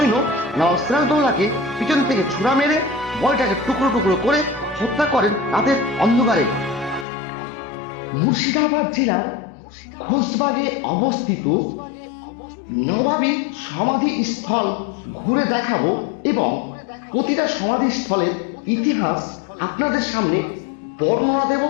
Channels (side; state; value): right; drops out; at 7.1 s